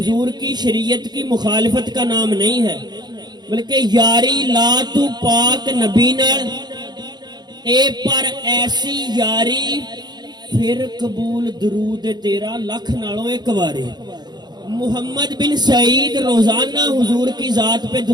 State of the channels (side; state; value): left; late; 0.20 ms